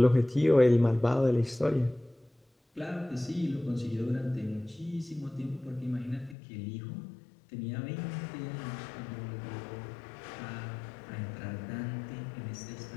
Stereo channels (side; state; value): right; drops out; at 6.4 s